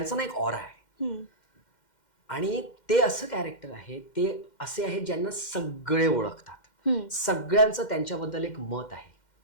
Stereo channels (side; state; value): right; late; 2.1 ms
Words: ना एक ऑरा आहे आणि ते असं कॅरेक्टर आहे, ते असे आहेत ज्यांना सगळे ओळखतात. सगळ्यांचं त्यांच्याबद्दल एक मत आहे.